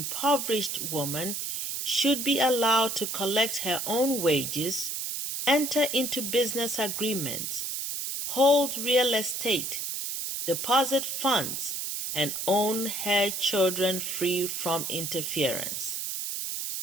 woman should be allowed to collect her own wages, enter into business agreements, hold real estate, deposit funds, and own her children free from interference.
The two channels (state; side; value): noise; right; hiss, 3 dB below the sound